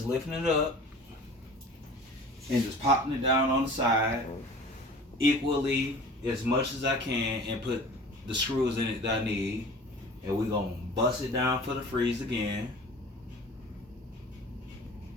lifting it up and just popping it down on the side equally as much as I can and put the screws in it that I need. And we're gonna bust it down for the freeze again.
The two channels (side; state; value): both; normal; correlation 0.42